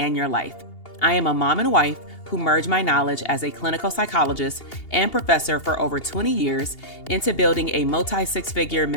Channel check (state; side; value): late; right; 2.8 ms